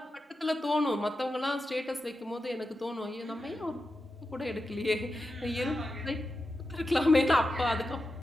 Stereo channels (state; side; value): normal; both; correlation 0.90